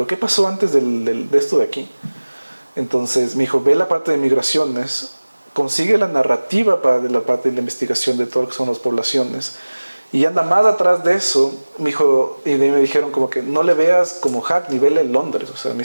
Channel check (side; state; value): both; inverted; correlation -1.00